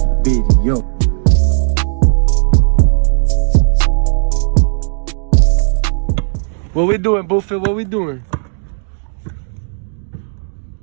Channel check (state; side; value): silent; left; digital silence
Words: video. What we doing, Buffett? What we doing?